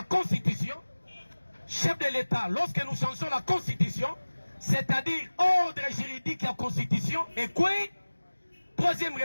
constitution. Chef de l'État, lorsque nous changeons la constitution, c'est-à-dire ordre juridique et la constitution, et quoi? Troisième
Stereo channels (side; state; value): both; inverted; correlation -1.00